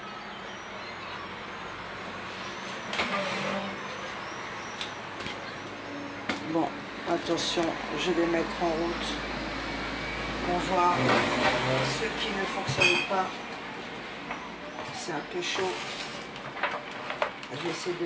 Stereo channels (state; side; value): identical; both; correlation 1.00